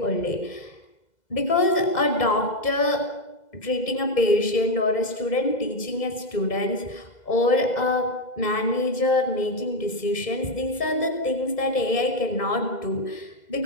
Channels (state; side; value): late; right; 2.0 ms